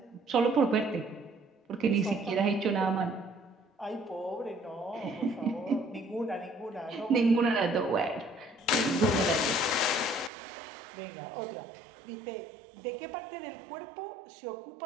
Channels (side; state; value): left; drops out; at 10.3 s